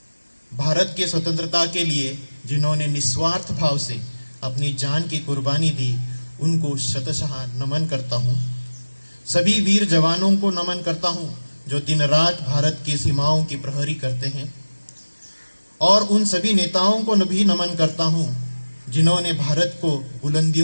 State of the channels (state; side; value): inverted; both; correlation -1.00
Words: भारत के स्वतंत्रता के लिए जिन्होंने निस्वार्थ भाव से अपनी जान की कुर्बानी दी, उनको शतशः नमन करता हूं। सभी वीर जवानों को नमन करता हूं जो दिन रात भारत की सीमाओं की प्रहरी करते हैं, और उन सभी नेताओं को भी नमन करता हूं जिन्होंने भारत को